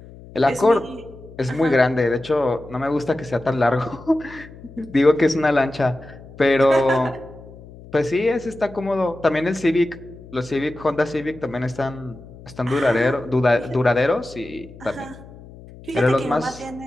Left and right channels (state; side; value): noise; left; hum, 19 dB below the sound